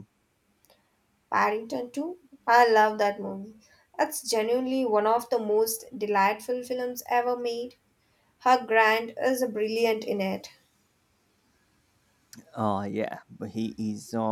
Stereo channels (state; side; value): identical; both; correlation 1.00